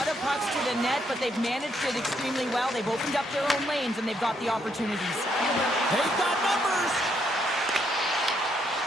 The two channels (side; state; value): both; normal; correlation 0.74